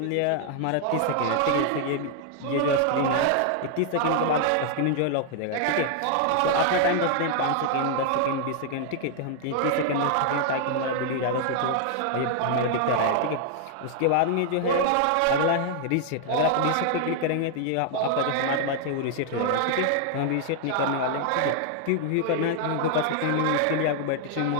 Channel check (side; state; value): both; different; correlation 0.00